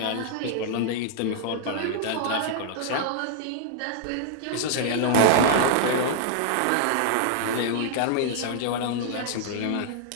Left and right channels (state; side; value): different; both; correlation -0.01